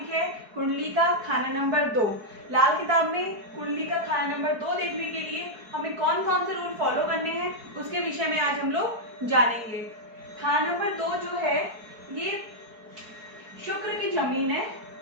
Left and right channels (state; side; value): late; left; 4.6 ms